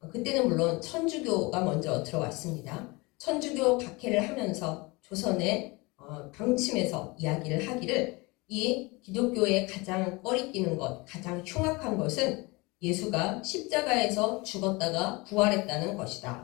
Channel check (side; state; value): right; quieter; 25.0 dB